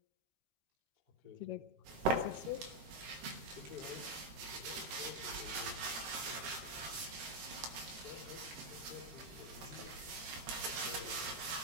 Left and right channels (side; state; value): left; late; 13 ms